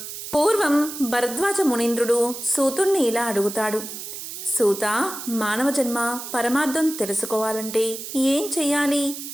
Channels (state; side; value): noise; right; hiss, 9 dB below the sound